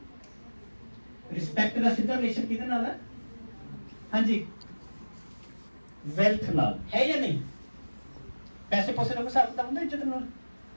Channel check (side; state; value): both; inverted; correlation -1.00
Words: Respect ਦਾ ਸਿੱਧਾ ਰਿਲੇਸ਼ਨ ਕਿਹਦੇ ਨਾਲ ਹੈ? ਹਾਂਜੀ ਵੈਲਥ ਨਾਲ ਹੈ ਜਾਂ ਨਹੀਂ? ਪੈਸੇ ਪੋਸੇ ਨਾਲ ਹਿਸਾਬ ਕਿਤਾਬ ਹੁੰਦਾ ਇੱਜ਼ਤ ਨਾਲ?